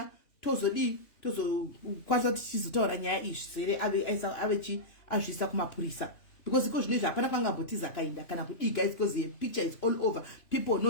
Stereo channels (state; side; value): late; right; 2.9 ms